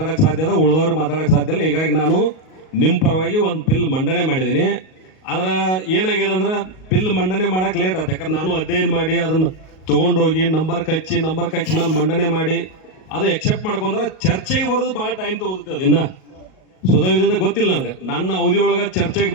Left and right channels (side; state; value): right; late; 38 ms